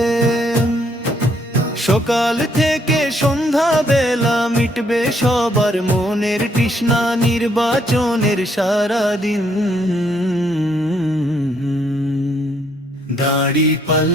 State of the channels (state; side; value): normal; both; correlation 0.70